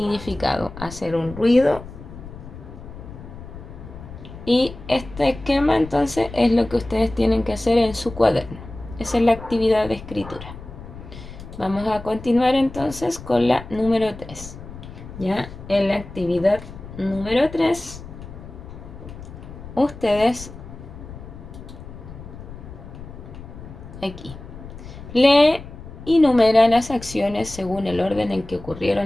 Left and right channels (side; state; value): left; noise; rumble, 14 dB below the sound